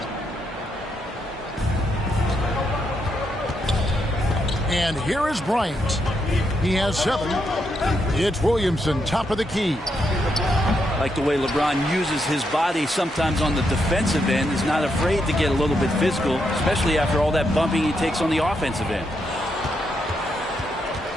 And here is Bryant. He has 7. It's Williamson, top of the key. Like the way LeBron uses his body sometimes on the defensive end. He's not afraid to get a little bit physical, especially after all that bumping he takes on the offensive end.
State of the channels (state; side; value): normal; both; correlation 0.80